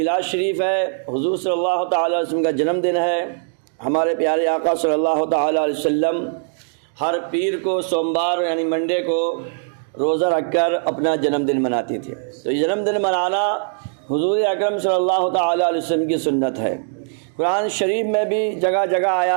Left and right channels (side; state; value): left; silent; digital silence